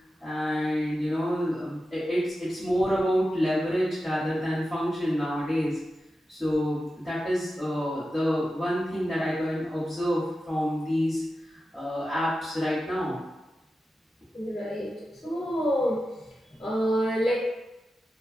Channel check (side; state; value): both; normal; correlation 0.92